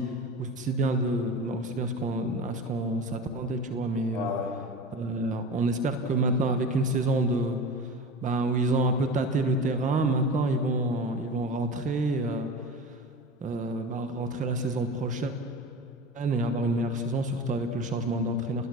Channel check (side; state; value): both; normal; correlation 0.31